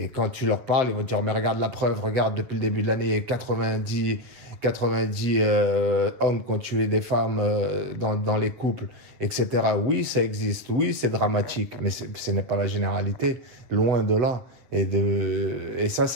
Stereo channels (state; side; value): late; left; 8.1 ms